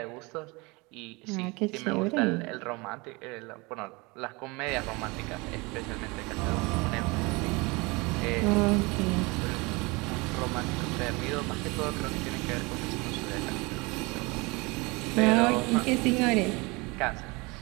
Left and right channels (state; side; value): quieter; left; 25.9 dB